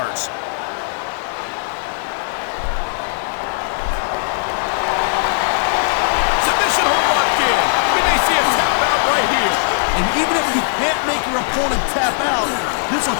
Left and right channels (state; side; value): silent; right; digital silence